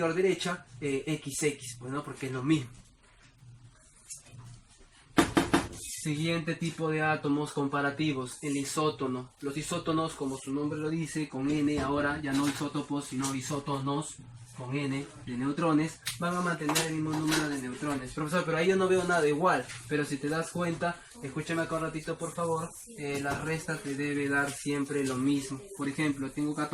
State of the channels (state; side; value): identical; both; correlation 1.00